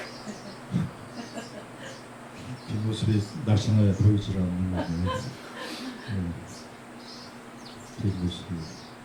뒷모습이 날씬해 보이질 않는 거네요. 뒷모습이.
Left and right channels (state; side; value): identical; both; correlation 1.00